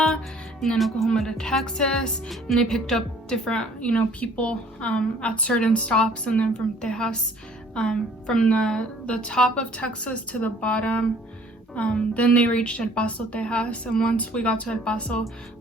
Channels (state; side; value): normal; both; correlation 0.56